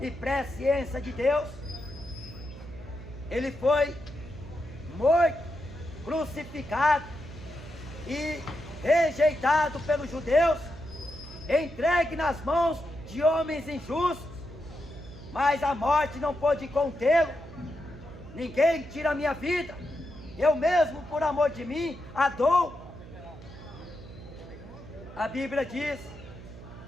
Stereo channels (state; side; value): noise; right; hum, 16 dB below the sound